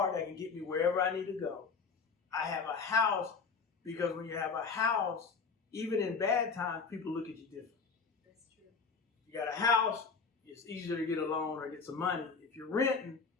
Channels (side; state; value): right; quieter; 5.1 dB